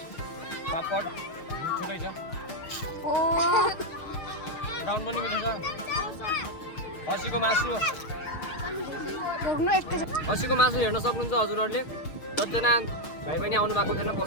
पापड मिठो छ, ब्राउन पनि मिठो छ। खसीको मासु हेर्न सक्नुहुन्छ हजुरहरूले। जतिजना भाइ पनि आउनु भएको थिएन,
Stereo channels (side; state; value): right; late; 6.5 ms